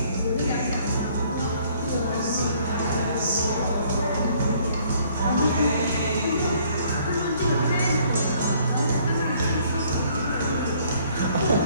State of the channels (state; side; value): inverted; both; correlation -0.61